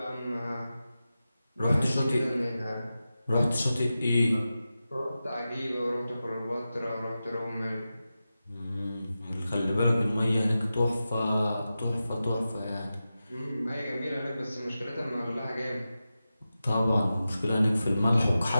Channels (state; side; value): inverted; both; correlation -0.93